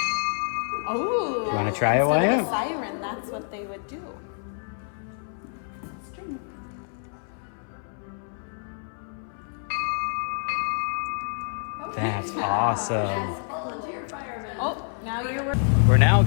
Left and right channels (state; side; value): silent; right; 60 dB below the other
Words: Oh, Want to try it, instead of a Wyatt? siren, that's what they would do. That's awesome. Oh, now you're. We're now